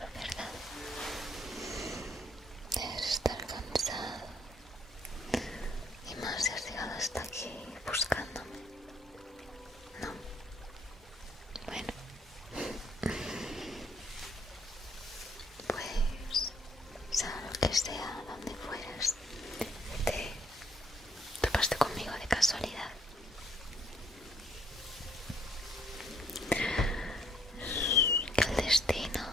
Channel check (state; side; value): normal; both; correlation 0.66